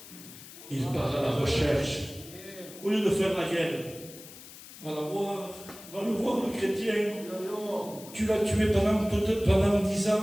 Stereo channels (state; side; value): noise; left; hiss, 17 dB below the sound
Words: Il part à la recherche. Au lieu de faire la guerre, va le voir, le chrétien. Tu l'as tué pendant 10